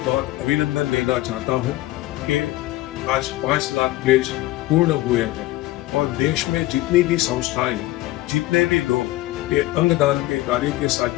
बहुत अभिनंदन देना चाहता हूँ कि आज 5 लाख प्लेज पूर्ण हुए हैं और देश में जितनी भी संस्थाएं, जितने भी लोग ये अंगदान के कार्य के साथ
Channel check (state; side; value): quieter; right; 17.1 dB